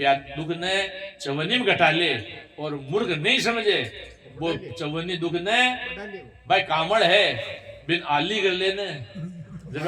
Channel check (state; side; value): identical; both; correlation 1.00